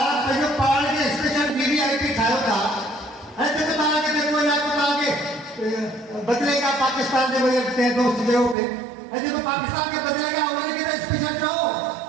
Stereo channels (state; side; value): drops out; left; at 8.6 s